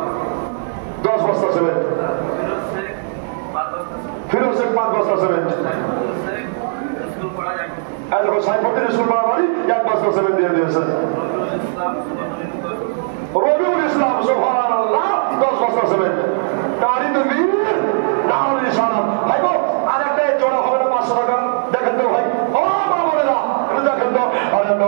10 বস্তা সিমেন্ট। ফিরোজ শেখ 5 বস্তা সিমেন্ট। স্কুল পড়া যায়। এই দেখো সাইফুদ্দিন স্কুল পাড়া বাড়ি 1 বস্তা সিমেন্ট দিয়ে দিয়েছে। রবিউল ইসলাম সুবহানাল্লাহ 10 বস্তা সিমেন্ট। নারী তো বীর নারী নিশানা। ভাই গো আরেকটা জোড়া হবে না 500 টাকা? দেখেন তো ভাই, ও মা বোনেরা একটু দেখেন তো। আরে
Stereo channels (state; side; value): silent; left; digital silence